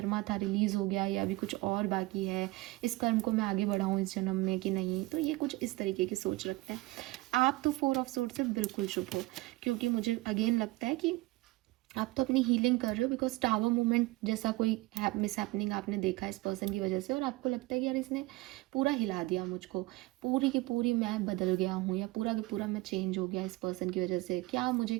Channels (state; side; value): quieter; left; 20.9 dB